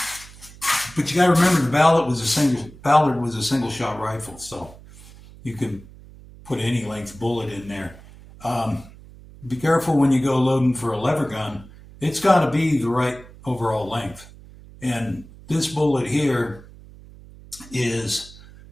But you got to remember, the Ballard was a single shot rifle, so you can put any length bullet in there. Be careful when you go loading for a lever gun. It's got to be the right overall length. And this bullet here is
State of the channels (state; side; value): noise; right; hum, 20 dB below the sound